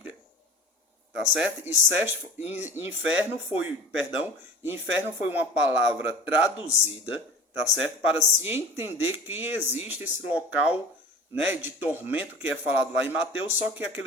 Tá certo? Inferno foi uma palavra traduzida, tá certo? Para se entender que existe esse local, né, de tormento que é falado lá em Mateus, só que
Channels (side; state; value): both; normal; correlation 0.38